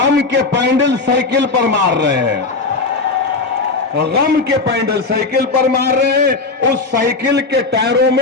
के पैंडल साइकिल पर मार रहे हैं, गम के पैंडल साइकिल पर मार रहे हैं। उस साइकिल के टायरों में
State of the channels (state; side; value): quieter; right; 3.8 dB